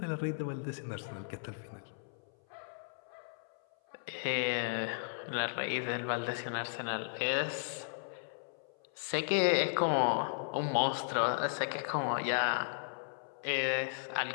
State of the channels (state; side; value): silent; right; 54 dB below the other